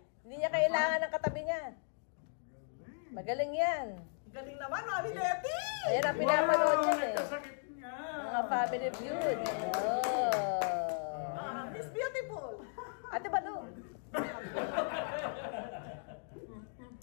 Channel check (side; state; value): right; silent; digital silence